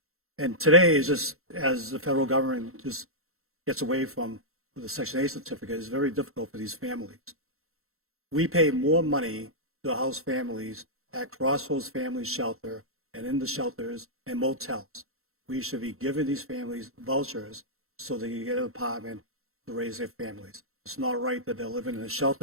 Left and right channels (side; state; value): left; late; 0.62 ms